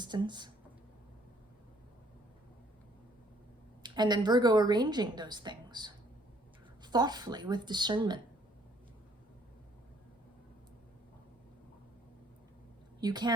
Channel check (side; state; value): both; normal; correlation 0.63